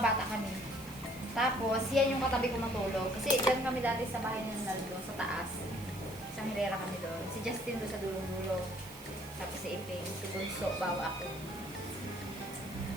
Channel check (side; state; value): right; noise; hiss, 17 dB below the sound